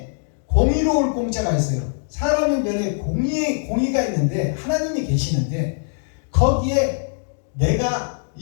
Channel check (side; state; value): right; silent; digital silence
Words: 공의로울 공자가 있어요. 사람인 변에 공의가 있는데 하나님이 계시는데 거기에 내가